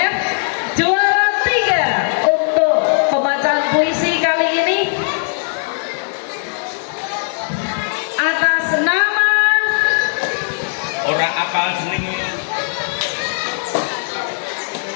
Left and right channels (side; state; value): right; silent; digital silence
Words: Juara 3 untuk pembacaan puisi kali ini atas nama Orang apal seneng.